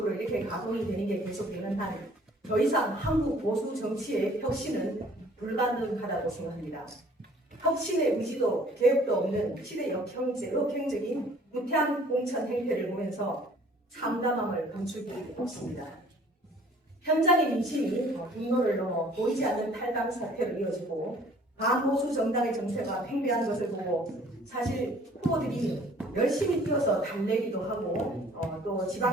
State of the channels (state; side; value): normal; both; correlation 0.55